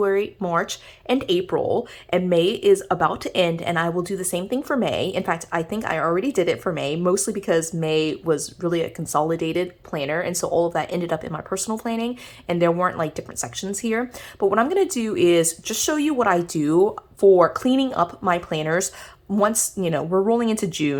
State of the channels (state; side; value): identical; both; correlation 1.00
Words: March, and April, and May is about to end, and I will do the same thing for May. In fact, I think I already did it for May, mostly because May was really a consolidated planner, and so all of that ended up in my personal planning, and there weren't like different sections here. But what I'm going to do is just show you what I do for cleaning up my planners once we're rolling into